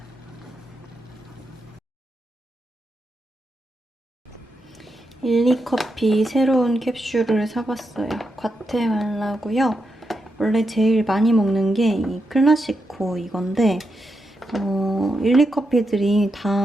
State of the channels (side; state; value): both; normal; correlation 0.85